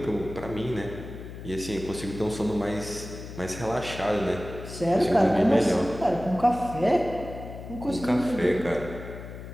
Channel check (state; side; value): noise; left; hum, 11 dB below the sound